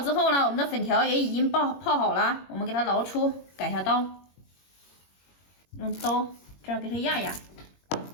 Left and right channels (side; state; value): right; late; 21 ms